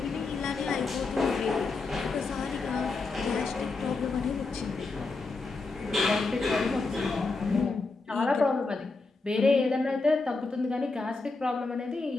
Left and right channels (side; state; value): right; quieter; 3.8 dB